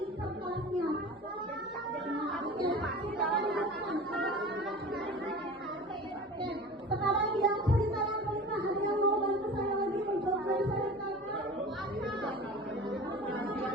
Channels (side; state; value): both; normal; correlation 0.37